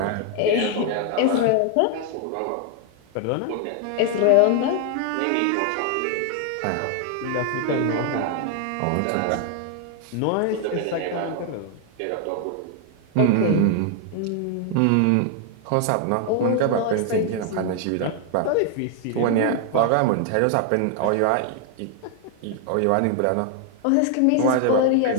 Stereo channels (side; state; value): both; different; correlation 0.00